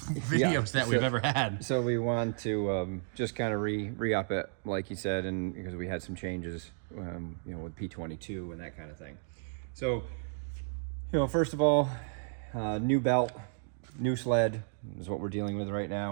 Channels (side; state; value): left; silent; digital silence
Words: that we've ever had. So we want to just kind of re-up it, like you said, and because we had some changes, you know, with P22 and that kind of thing. So, you know, first of all, new belt, new sled is what we're dealing with right